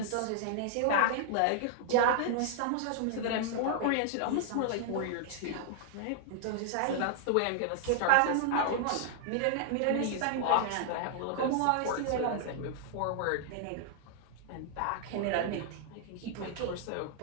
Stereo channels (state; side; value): different; both; correlation 0.00